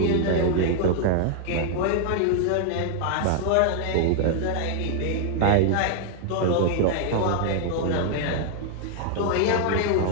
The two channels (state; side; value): different; both; correlation 0.00